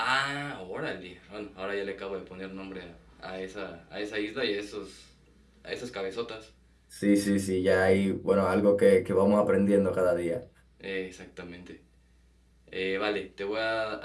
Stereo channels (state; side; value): identical; both; correlation 1.00